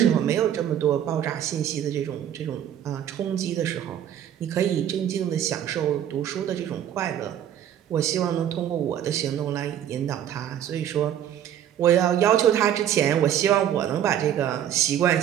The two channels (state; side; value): quieter; left; 10.4 dB